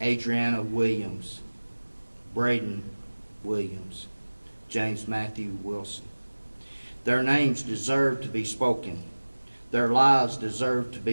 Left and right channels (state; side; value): inverted; both; correlation -1.00